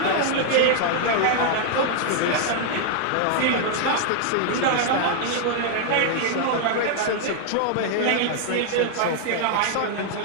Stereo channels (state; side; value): different; both; correlation 0.00